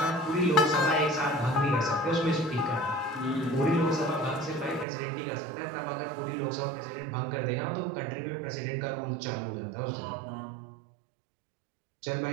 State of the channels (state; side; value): drops out; left; at 4.9 s